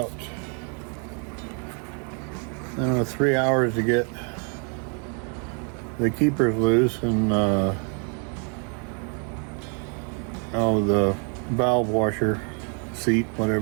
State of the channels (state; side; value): quieter; left; 39.3 dB